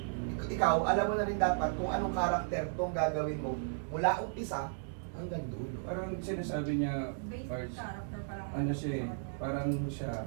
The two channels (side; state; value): left; silent; digital silence